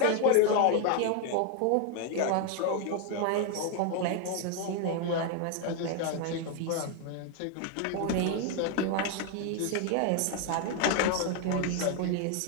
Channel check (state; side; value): different; both; correlation 0.01